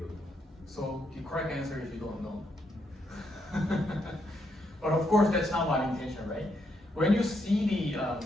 So the correct answer is you don't know. But of course, that's not my intention, right? When you see the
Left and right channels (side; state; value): both; normal; correlation 0.77